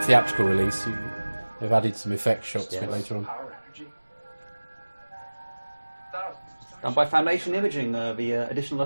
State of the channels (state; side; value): inverted; both; correlation -1.00